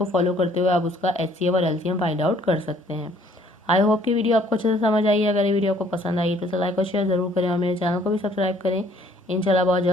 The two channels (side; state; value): both; normal; correlation 0.60